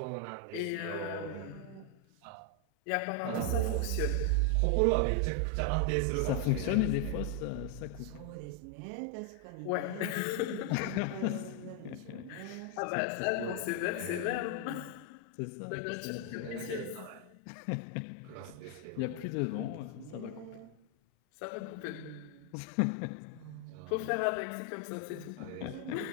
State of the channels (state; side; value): different; both; correlation 0.01